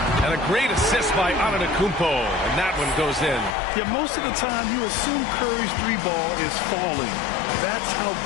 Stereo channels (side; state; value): right; drops out; at 3.6 s